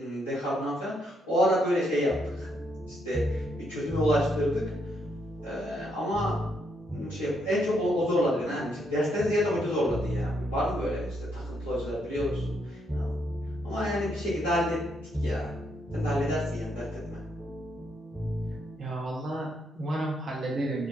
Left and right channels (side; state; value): both; normal; correlation 0.76